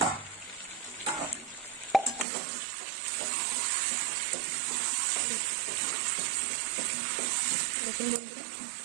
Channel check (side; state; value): left; drops out; at 2.2 s